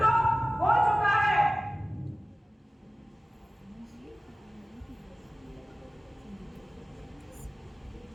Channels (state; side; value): normal; both; correlation 0.97